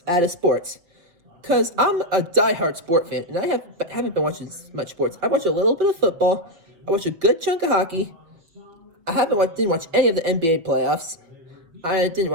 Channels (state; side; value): late; left; 5.6 ms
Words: out of sports. Because I'm a diehard sport fan, and I haven't been watching much sports. I watched a little bit of football. I watched a good chunk of hockey. I didn't watch any of the NBA playoffs. I didn't